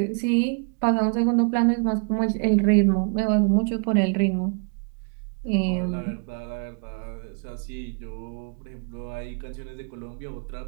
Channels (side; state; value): left; quieter; 37.6 dB